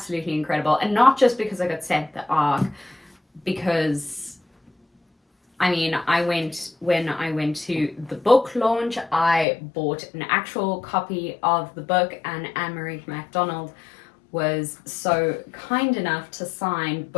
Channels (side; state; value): right; drops out; at 9.5 s